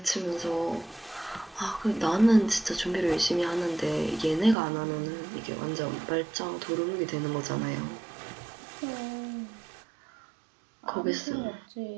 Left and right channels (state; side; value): drops out; left; at 4.5 s